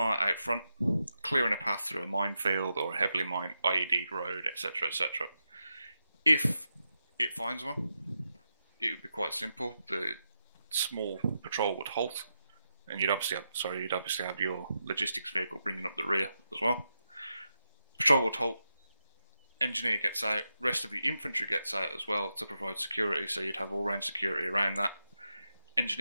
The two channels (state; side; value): inverted; both; correlation -0.87